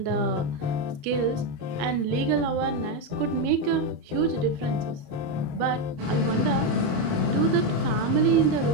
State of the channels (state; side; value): late; left; 27 ms